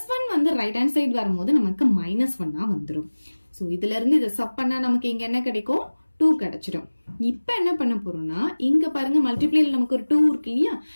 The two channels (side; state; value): both; inverted; correlation -1.00